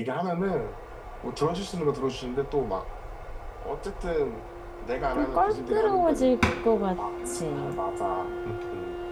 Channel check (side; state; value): both; identical; correlation 1.00